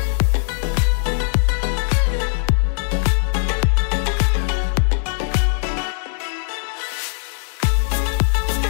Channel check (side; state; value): right; silent; 63 dB below the other